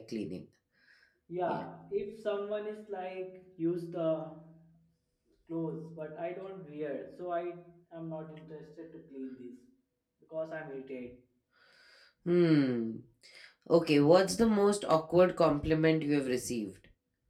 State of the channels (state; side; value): identical; both; correlation 1.00